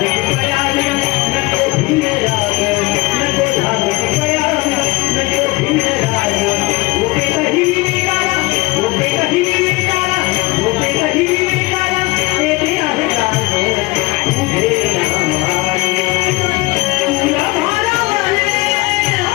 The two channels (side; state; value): right; quieter; 22.8 dB